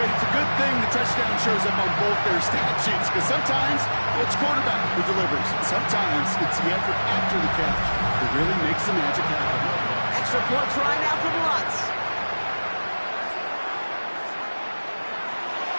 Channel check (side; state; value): both; inverted; correlation -1.00